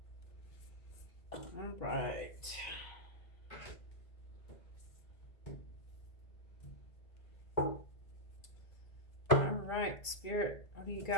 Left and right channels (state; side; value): late; right; 2.3 ms